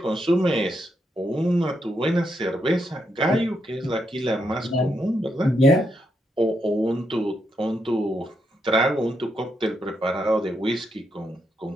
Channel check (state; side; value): normal; both; correlation 0.80